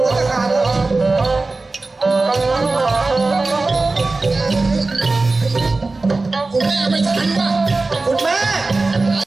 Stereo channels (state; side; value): quieter; left; 3.5 dB